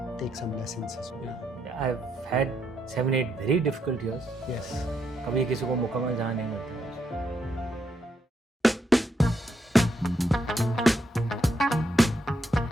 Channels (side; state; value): both; normal; correlation 0.78